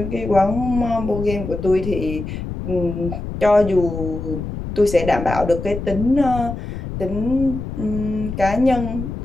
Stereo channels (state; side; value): noise; left; rumble, 7 dB below the sound